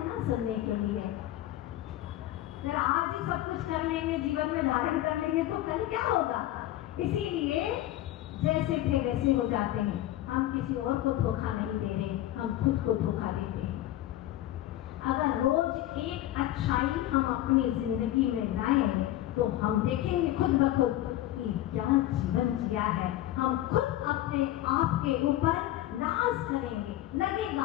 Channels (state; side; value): quieter; right; 14.3 dB